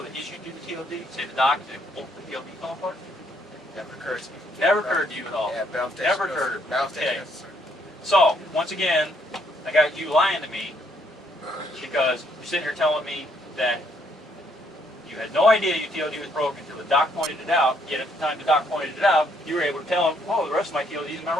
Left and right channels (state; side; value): normal; both; correlation 0.70